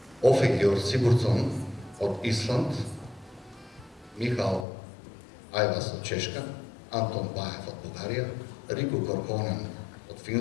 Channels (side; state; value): right; drops out; at 4.7 s